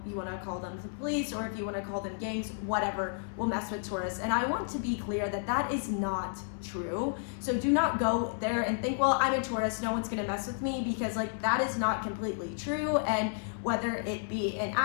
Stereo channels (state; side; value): silent; right; 57 dB below the other